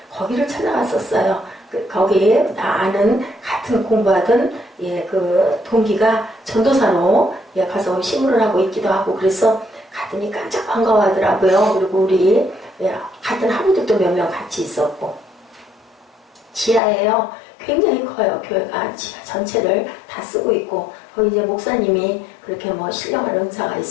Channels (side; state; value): right; drops out; at 16.8 s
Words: 거기를 찾아갔었어요. 거기에 나 아는 같은 공부하던 예, 그 동기가 전도사로 예, 가서 신문을 하고 있기도 하고 그래서 갔더니 깜짝 반가워하더라고요. 그리고 우리 예, 같은 학우들도 몇 명 같이 있었고 지하예요. 굉장히 커요. 교회가 지하 전체를 다 쓰고 있고 거기 이제 목사님이 그렇게 뭐 신령한 은사가